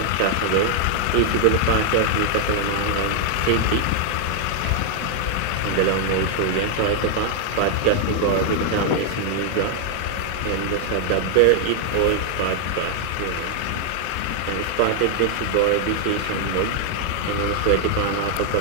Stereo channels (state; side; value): different; both; correlation 0.00